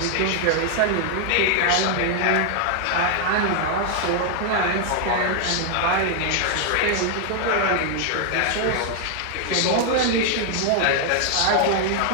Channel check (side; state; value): both; different; correlation 0.00